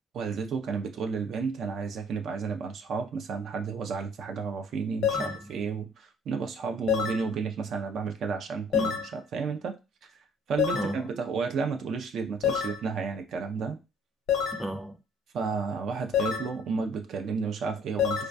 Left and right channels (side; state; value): both; normal; correlation 0.57